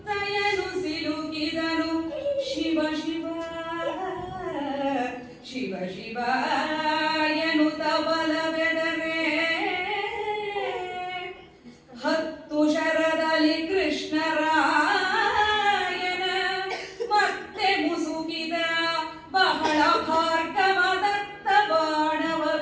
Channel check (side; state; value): both; identical; correlation 1.00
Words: ಸಿಲುಕಿದನು. ಶಿವ ಶಿವ ಶಿವ ಶಿವ ಎನ್ನುತ್ತ ಬಲವೆದರೆ ಹತ್ತು ಶರದಲ್ಲಿ ಕೃಷ್ಣರಾಯನ ಮತ್ತೆ ಮುಸುಕಿದ ಬಹಳ ಭಾರ್ಗವದತ್ತ ಬಾಣವ